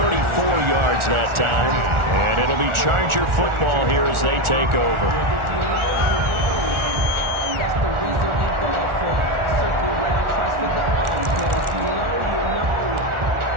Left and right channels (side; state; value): left; late; 1.4 ms